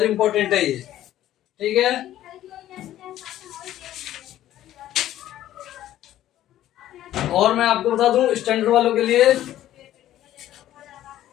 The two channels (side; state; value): right; quieter; 13.0 dB